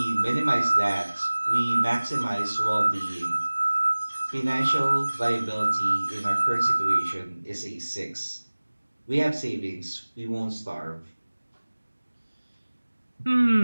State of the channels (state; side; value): inverted; both; correlation -1.00